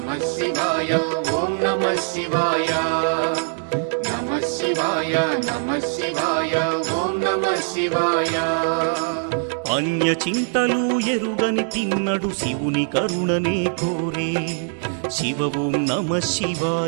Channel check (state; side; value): silent; left; digital silence